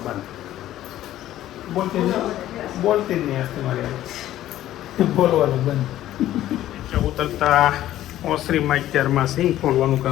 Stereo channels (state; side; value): quieter; right; 13.4 dB